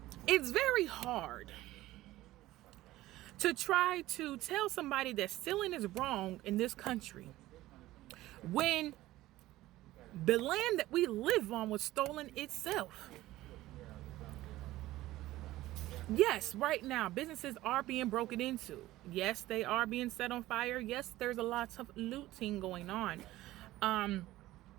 it's very hard to try to tell somebody that stealing is wrong in this country when the land that we live on was stolen itself. Yes, right now businesses are being broken into. Yes, they are being set on fire. Yes, there's a lot of looting going on.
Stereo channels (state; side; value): quieter; left; 16.4 dB